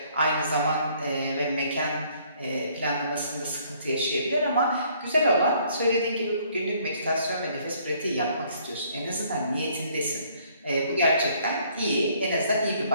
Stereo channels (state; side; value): inverted; both; correlation -0.63